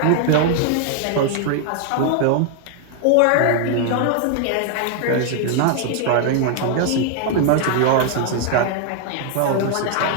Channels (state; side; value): different; both; correlation 0.00